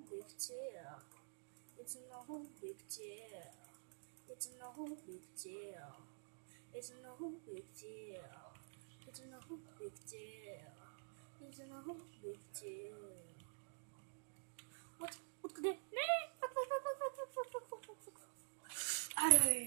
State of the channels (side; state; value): left; silent; digital silence